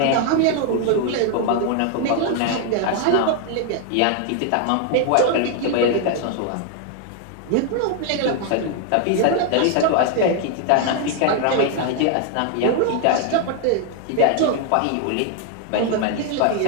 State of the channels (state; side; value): different; both; correlation 0.00